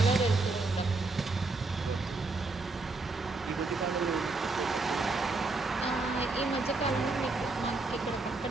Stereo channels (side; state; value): left; quieter; 3.5 dB